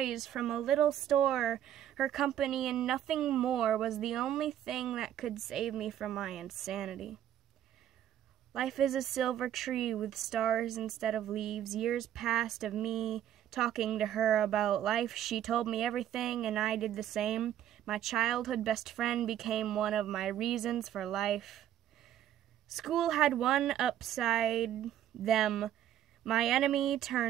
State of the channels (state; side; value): quieter; left; 11.2 dB